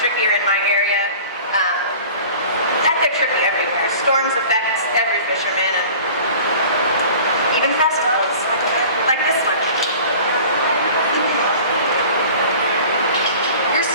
in my area. They're tricky everywhere. Storms affect every fisherman, and even festivals, like this one. You're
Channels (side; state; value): both; inverted; correlation -0.43